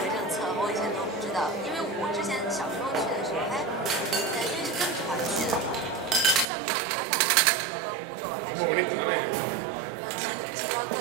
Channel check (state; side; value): drops out; left; at 6.5 s